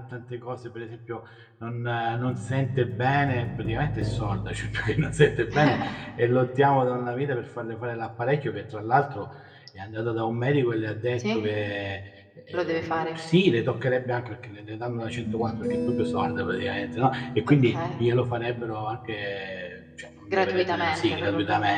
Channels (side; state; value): both; identical; correlation 1.00